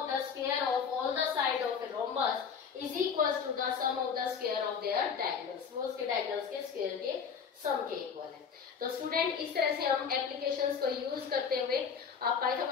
the square of all the side of a rhombus is equal to the sum of the square of their diagonals. वो उसके diagonals के square के सम के इक्वल है। तो स्टूडेंट इस तरह से हम एप्लीकेशंस को यूज करते हुए,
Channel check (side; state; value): right; quieter; 6.5 dB